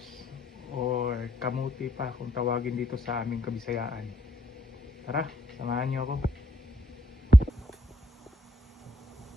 or kamuti pa kung tawagin dito sa aming Kabisayaan. Tara, samahan niyo ako.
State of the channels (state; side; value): normal; both; correlation 0.75